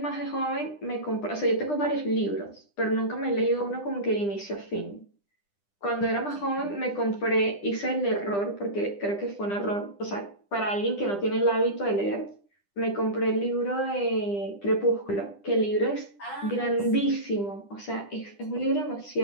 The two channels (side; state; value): right; late; 10 ms